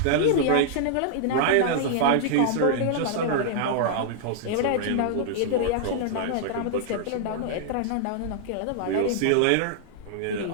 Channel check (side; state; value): both; different; correlation -0.01